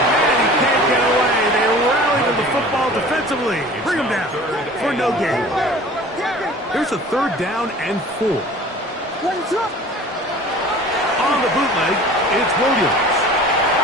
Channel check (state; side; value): normal; both; correlation 0.44